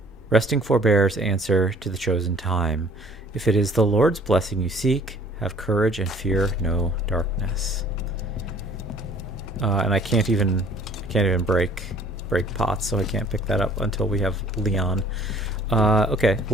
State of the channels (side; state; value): both; normal; correlation 0.55